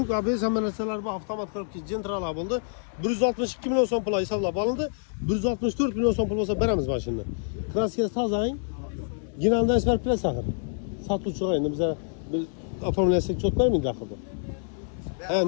ABS hamma narsalar bor, avtomat korobka gentralar bo'ldi. 162 million so'm pul hisoblab olindi. 164 million so'm pul bo'lsa beramiz mashinani. Kraskasi tozang. Ginaldan isbar plas axir. Sotuvchi endi bizlar oformlasak cho't bermaydi axir.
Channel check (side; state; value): right; silent; digital silence